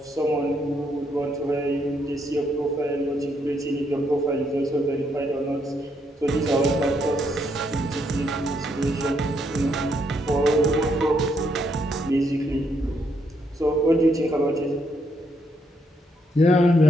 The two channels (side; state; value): both; normal; correlation 0.75